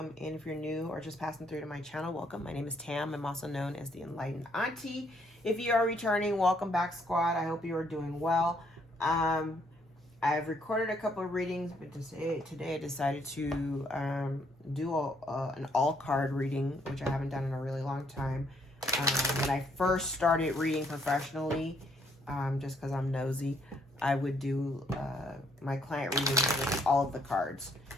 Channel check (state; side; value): normal; both; correlation 0.69